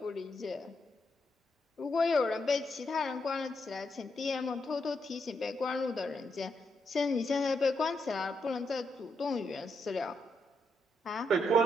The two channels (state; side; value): normal; both; correlation 0.80